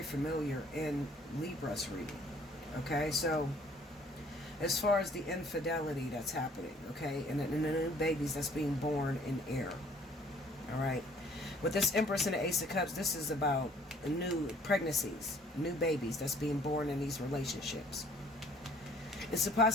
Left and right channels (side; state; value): both; normal; correlation 0.57